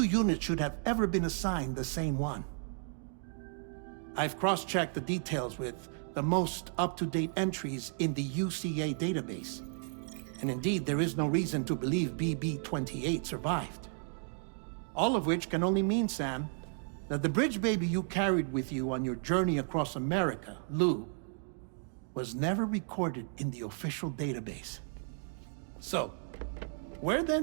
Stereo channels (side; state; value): left; silent; 55 dB below the other